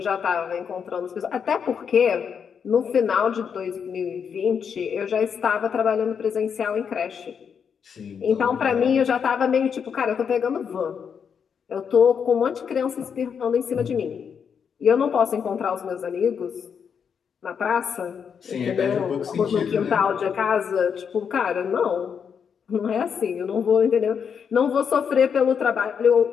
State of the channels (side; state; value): right; quieter; 7.0 dB